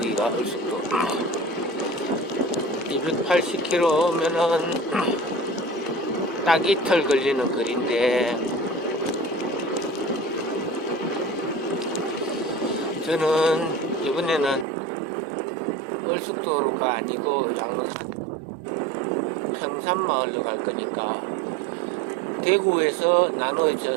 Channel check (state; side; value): drops out; left; at 14.7 s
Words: 얼숙도. 280km면은 딱 이틀 걸리는 거리인데 저는 이번에는 얼숙도로가 아니고 양산 평산마을로 갈 거니까 대구에서